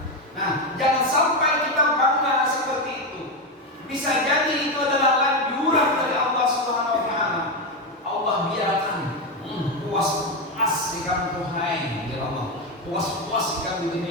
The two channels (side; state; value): both; normal; correlation 0.10